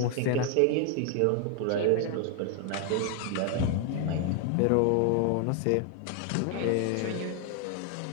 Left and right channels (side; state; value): both; different; correlation 0.00